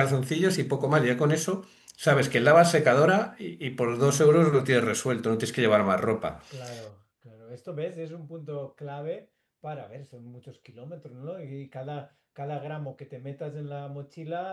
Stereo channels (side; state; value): both; identical; correlation 1.00